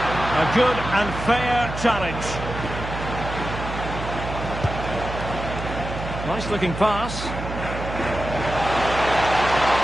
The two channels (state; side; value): noise; right; hum, 7 dB below the sound